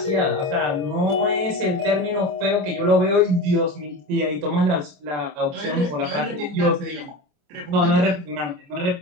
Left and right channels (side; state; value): left; late; 29 ms